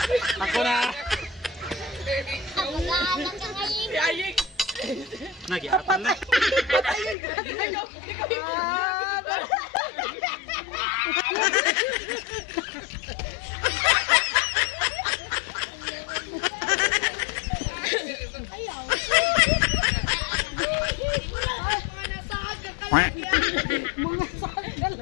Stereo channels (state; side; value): drops out; right; at 7.2 s